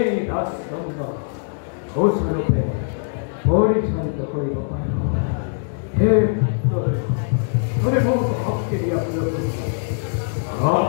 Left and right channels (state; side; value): silent; right; digital silence